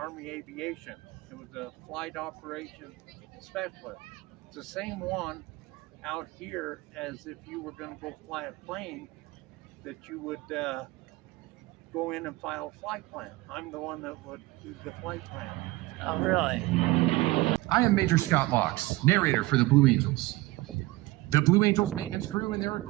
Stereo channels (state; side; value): quieter; left; 20.3 dB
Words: Aviation. It was a flight operations specialist. It's the same one out here as if you were going to go fly a plane, that you would go in and file a flight plan. I'm the one that would do the flight plan. Oh, really? I am Major Scott Locks, narrator for the Blue Angels. The Blue Angels maintenance crew and their